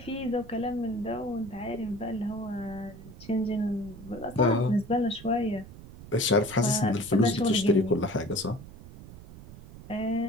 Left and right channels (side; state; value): right; noise; rumble, 16 dB below the sound